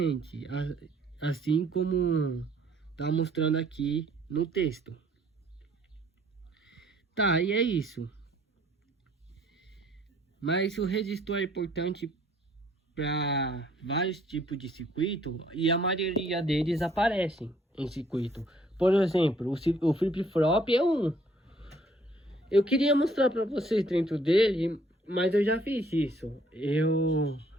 assim como tá mostrando aqui no texto. Tá, e é isso. Mas o resistor é importante para vários tipos de circuito e a maioria deles aparecem em circuito. Por exemplo, o flip-flop é um. Eu queria mostrar para vocês dentro dele, mas eu já fiz isso. Eu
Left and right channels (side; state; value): both; normal; correlation 0.62